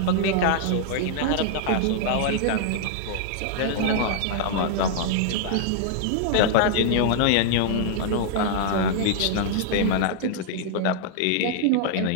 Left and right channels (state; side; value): different; both; correlation -0.01